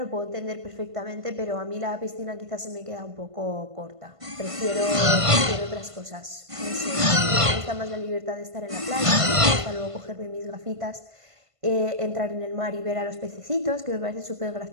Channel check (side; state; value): left; late; 1.5 ms